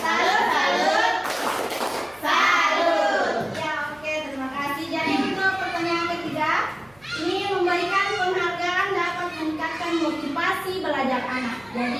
Salut. Ya, oke, terima kasih. Jadi untuk pertanyaan ketiga, ini memberikan penghargaan dapat meningkatkan motivasi belajar anak.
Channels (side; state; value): right; noise; hum, 29 dB below the sound